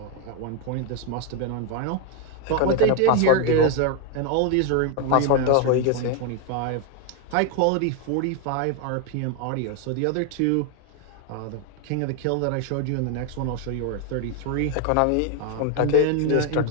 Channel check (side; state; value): both; different; correlation 0.01